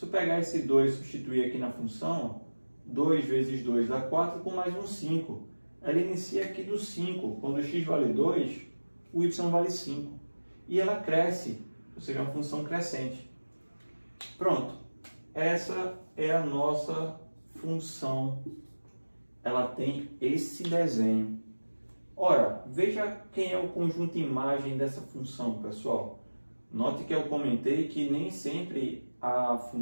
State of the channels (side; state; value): both; inverted; correlation -1.00